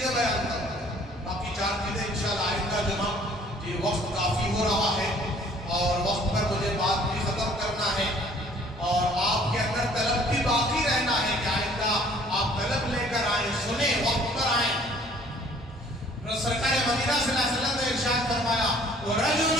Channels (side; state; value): both; normal; correlation 0.56